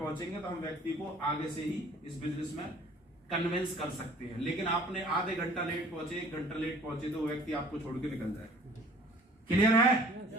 तो हम व्यक्ति को आगे से ही इस बिजनेस में कन्विंस कर सकते हैं। लेकिन आपने आधे घंटा लेट पहुंचे, 1 घंटा लेट पहुंचे तो व्यक्ति आपको छोड़ के निकल जाएगा। क्लियर है?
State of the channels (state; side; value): normal; both; correlation 0.51